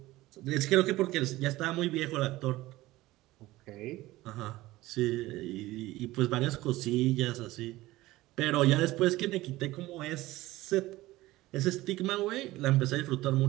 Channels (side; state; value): left; quieter; 17.8 dB